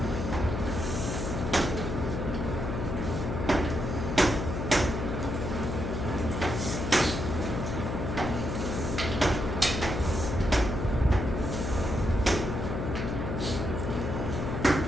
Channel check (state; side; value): noise; left; hum, 3 dB below the sound